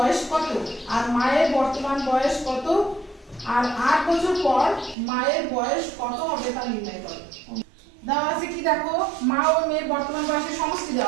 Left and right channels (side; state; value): left; drops out; at 5.0 s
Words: কত, আর মায়ের বর্তমান বয়স কত, আর 8 বছর পর মায়ের বয়স কত হবে তা নির্ণয় করো। দেওয়া আছে কি দেখো, মা ও মেয়ের বর্তমান বয়সের সমষ্টি